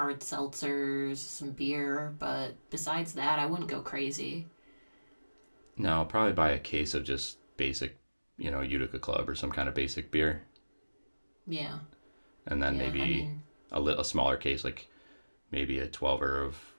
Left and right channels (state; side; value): inverted; both; correlation -1.00